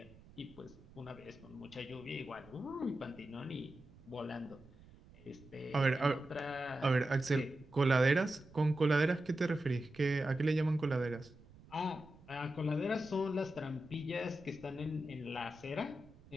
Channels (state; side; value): noise; right; rumble, 22 dB below the sound